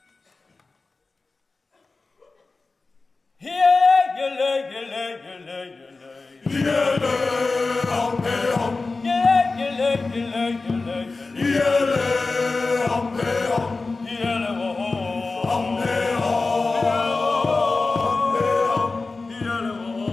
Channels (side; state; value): right; quieter; 3.7 dB